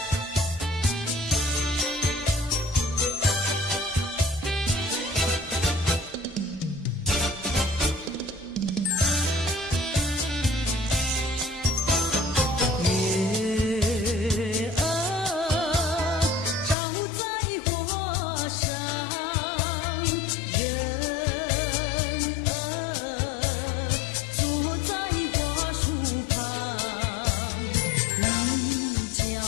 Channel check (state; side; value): drops out; right; at 16.8 s